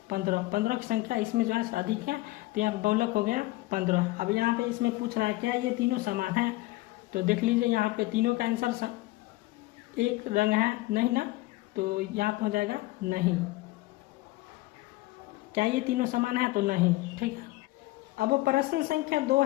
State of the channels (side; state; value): right; quieter; 19.3 dB